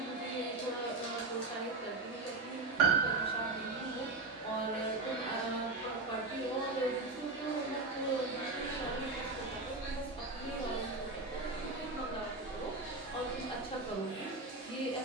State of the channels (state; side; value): quieter; left; 3.2 dB